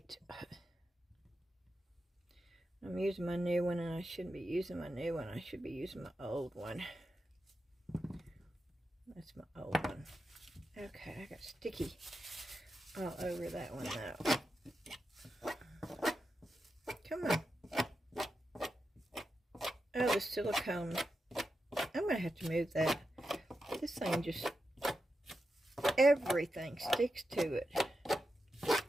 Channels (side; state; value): both; normal; correlation 0.88